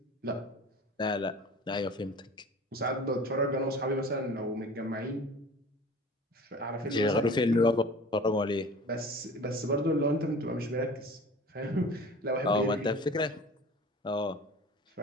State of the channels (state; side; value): normal; both; correlation 0.42